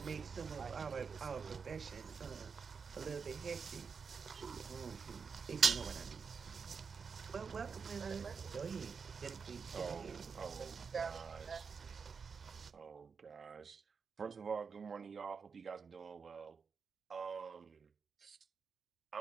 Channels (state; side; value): quieter; left; 5.7 dB